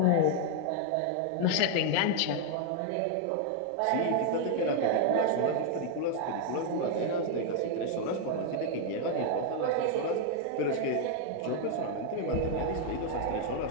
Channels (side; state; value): both; different; correlation 0.00